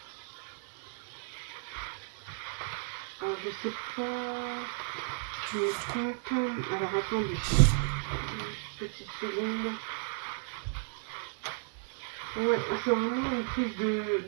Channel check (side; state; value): left; silent; 55 dB below the other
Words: Alors je sais pas, je me trompe. Alors attendez, juste une petite seconde. Ouais, c'est vraiment une prise